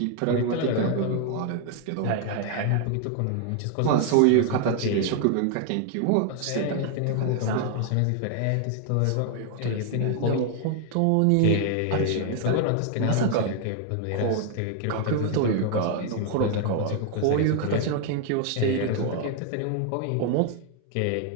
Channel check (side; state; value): both; different; correlation 0.00